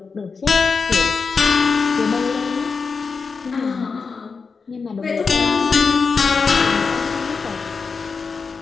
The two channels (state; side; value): quieter; right; 5.0 dB